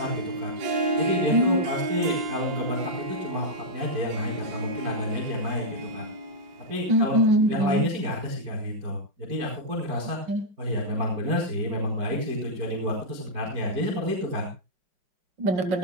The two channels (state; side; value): late; left; 4.5 ms